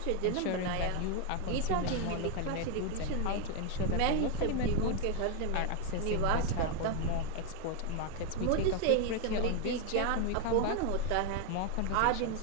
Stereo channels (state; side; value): different; both; correlation 0.01